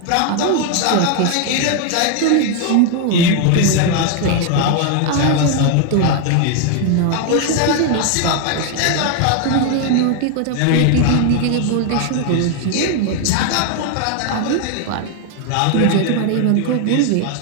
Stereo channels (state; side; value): different; both; correlation 0.00